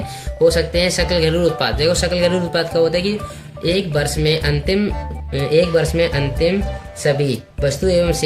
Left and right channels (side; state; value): both; identical; correlation 1.00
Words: हो सकते हैं। सकल घरेलू उत्पाद, देखो सकल घरेलू उत्पाद का होता है कि एक वर्ष में अंतिम सभी वस्तु एवं